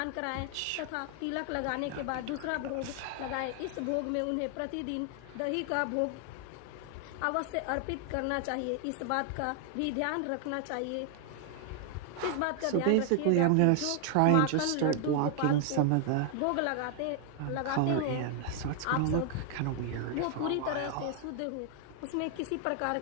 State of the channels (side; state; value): both; different; correlation 0.00